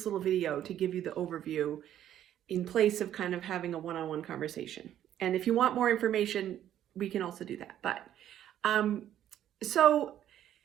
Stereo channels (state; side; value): quieter; left; 11.3 dB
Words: little video to give you the overview in place of kind of having a one-on-one conversation. And if you want more information, we can also do that. So